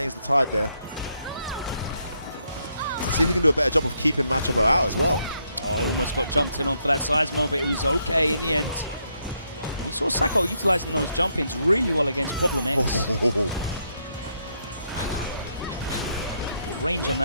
the tide there. Let's see if we can do a better job of keeping Machabo out as well. Oh, he almost got jumped in on for that Seismo, but it was okay in the end. We saw Sako utilizing those jump-ins really well against Problem X. The range on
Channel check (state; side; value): inverted; both; correlation -0.77